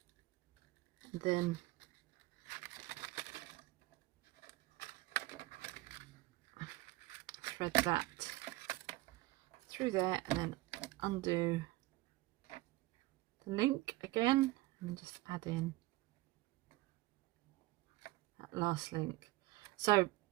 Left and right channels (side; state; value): left; quieter; 19.7 dB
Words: and then thread that through there, and then undo the link again, and then just add in that last link. So